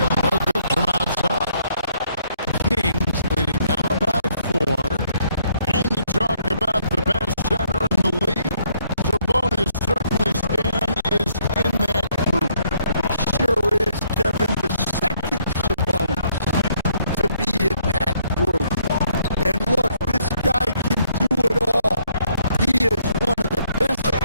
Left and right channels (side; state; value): both; inverted; correlation -0.70